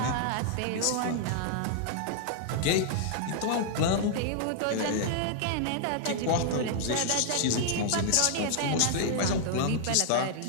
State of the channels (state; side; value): different; both; correlation -0.01